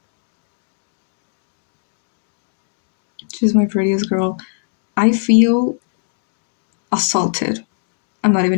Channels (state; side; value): silent; right; digital silence